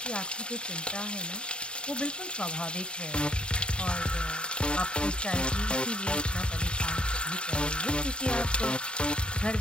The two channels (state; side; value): late; right; 0.053 ms